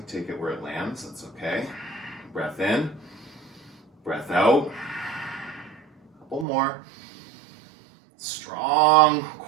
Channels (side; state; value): left; drops out; at 6.5 s